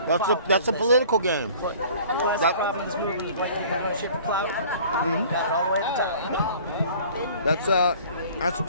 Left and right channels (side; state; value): both; inverted; correlation -0.49